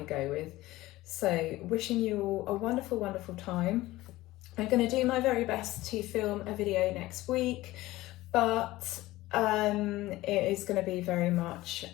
go with. So wishing you all a wonderful, wonderful time. I'm going to do my very best to film a video next week, but it is going to be very much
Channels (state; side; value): quieter; right; 17.7 dB